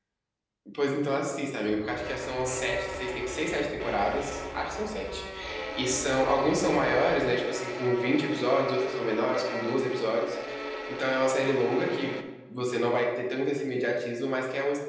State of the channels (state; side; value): identical; both; correlation 1.00